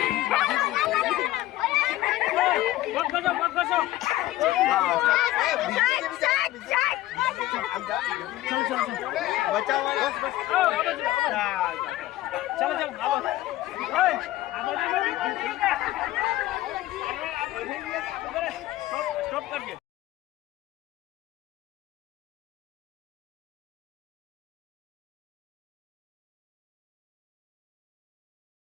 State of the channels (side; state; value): right; quieter; 15.7 dB